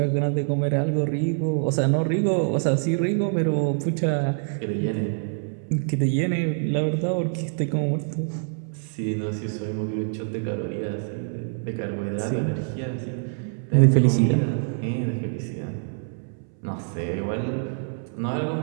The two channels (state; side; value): silent; left; 61 dB below the other